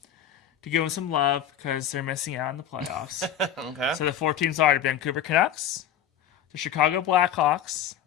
to give them some love because they're missing out on the playoffs. Okay. So the 4 teams are the Vancouver Canucks, the Chicago Blackhawks,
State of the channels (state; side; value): quieter; right; 9.5 dB